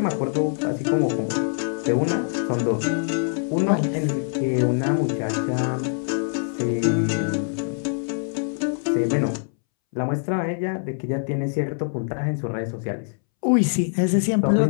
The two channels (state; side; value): silent; right; 63 dB below the other